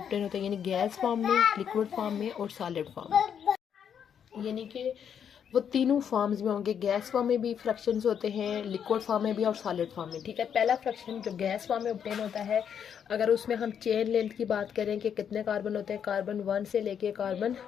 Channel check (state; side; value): quieter; right; 8.1 dB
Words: होते हैं, यानी गैस फॉर्म में, लिक्विड फॉर्म में और सॉलिड फॉर्म में। यानी कि वो तीनों फॉर्म्स में होंगे। गैस फॉर्म में भी फ्रैक्शंस होते हैं, लिक्विड फॉर्म में भी और सॉलिड फॉर्म में। ठीक है, पहला फ्रैक्शन जो गैस फॉर्म में ऑब्टेन होता है, अगर उसमें हम चेन लेंथ की बात करें कि कितने कार्बन होते हैं, कार्बन 1 से लेके कार्बन